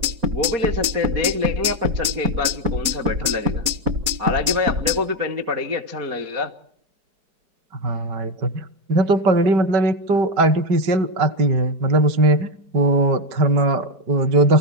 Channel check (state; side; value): late; left; 4.2 ms